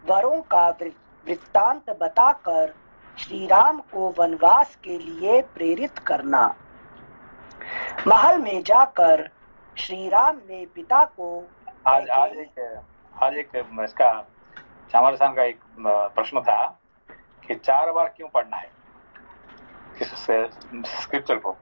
वरों का वृत्तांत बताकर श्रीराम को वनवास के लिए प्रेरित करना। महल में जाकर श्रीराम ने पिता को आज एक इसका चामर साहब का एक प्रश्न था कि 4 बार क्यों पढ़ना है किस स्क्रिप्चर को,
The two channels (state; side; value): inverted; both; correlation -1.00